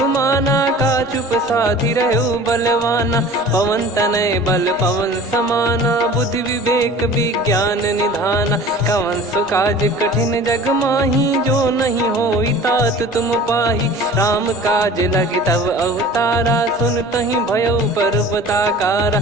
का चुप साधि रहु बलवाना पवन तनय बल पवन समाना बुद्धि विवेक विज्ञान निधाना कवन सो काज कठिन जग माही जो नहीं होई तात तुम पाही राम काज लगी तब अवतारा सुन तहि भयो पर्वताकारा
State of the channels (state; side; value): normal; both; correlation 0.42